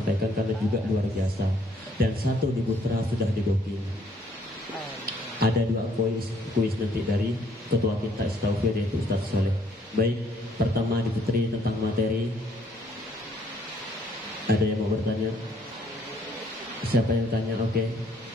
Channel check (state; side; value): normal; both; correlation 0.65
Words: karena juga luar biasa, dan 1 di Putra sudah di booking. Ada 2 kuis nanti dari ketua kita Istaufir yaitu Ustaz Soleh. Baik, pertama di Putri tentang materi. Ada yang mau bertanya? Siapa yang tanya? Oke.